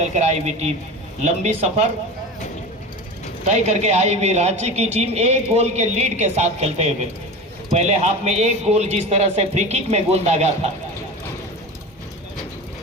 आई हुई टीम लंबी सफर तय करके आई हुई रांची की टीम एक गोल के लीड के साथ खेलते हुए पहले हाफ में एक गोल जिस तरह से फ्री किक में गोल दागा था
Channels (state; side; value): normal; both; correlation 0.30